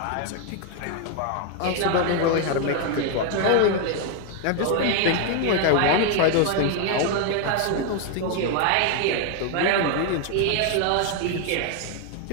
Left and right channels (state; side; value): different; both; correlation 0.00